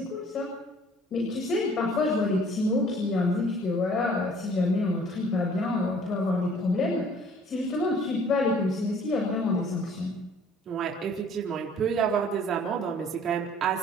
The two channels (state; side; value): normal; both; correlation 0.54